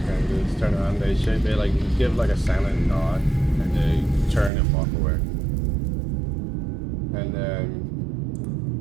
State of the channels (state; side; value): drops out; left; at 4.5 s